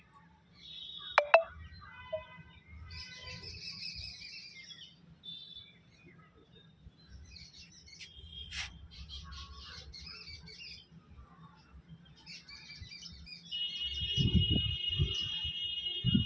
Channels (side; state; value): both; identical; correlation 1.00